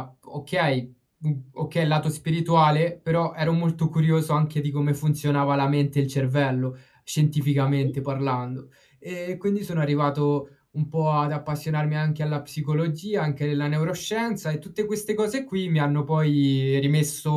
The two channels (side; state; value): both; identical; correlation 1.00